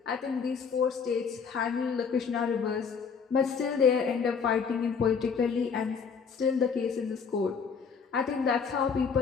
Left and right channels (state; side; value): quieter; right; 6.0 dB